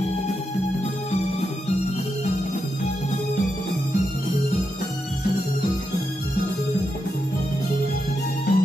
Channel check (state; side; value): normal; both; correlation 0.85